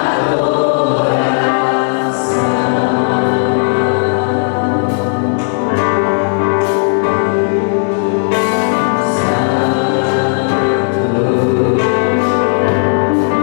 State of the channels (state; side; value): silent; right; digital silence